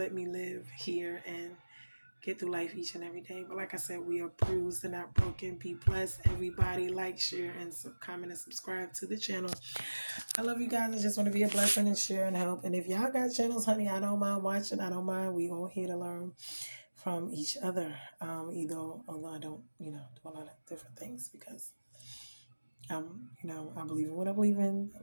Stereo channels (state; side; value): inverted; both; correlation -1.00